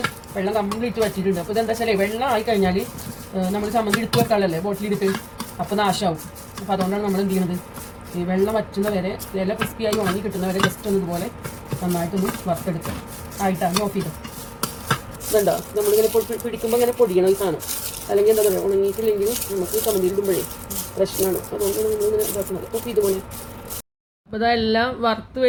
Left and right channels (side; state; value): both; identical; correlation 1.00